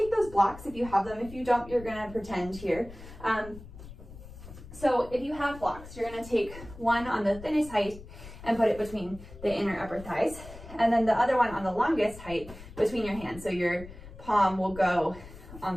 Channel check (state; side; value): noise; left; rumble, 16 dB below the sound